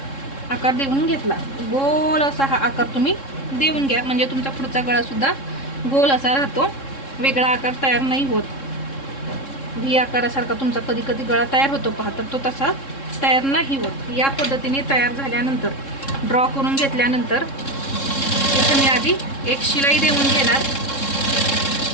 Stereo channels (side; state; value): right; late; 3.7 ms